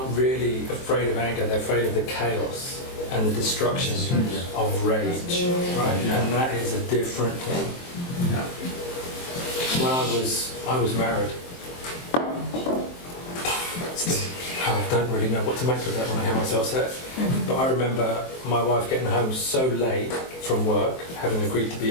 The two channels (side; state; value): right; late; 23 ms